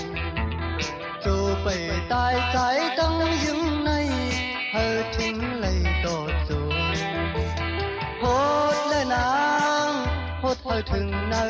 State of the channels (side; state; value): both; identical; correlation 1.00